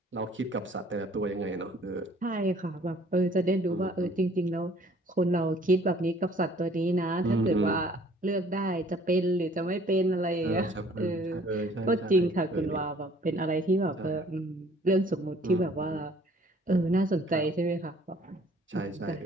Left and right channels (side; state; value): both; normal; correlation 0.56